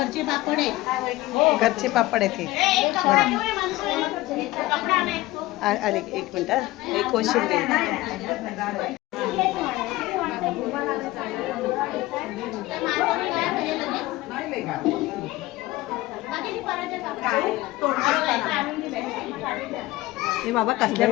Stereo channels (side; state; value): right; quieter; 18.2 dB